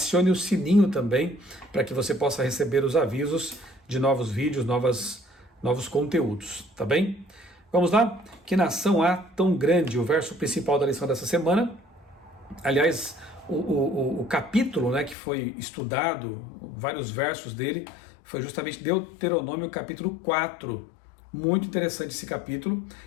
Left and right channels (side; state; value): right; drops out; at 15.2 s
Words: o sininho também, para que você possa receber os avisos de novos vídeos, novos conteúdos, tá bem? Vamos lá? Que nação há tão grande? O verso principal da lição dessa semana, aliás, o capítulo, né, que foi estudado, vários versos dele, foi justamente Deuteronômio capítulo 4, muito interessante esse capítulo,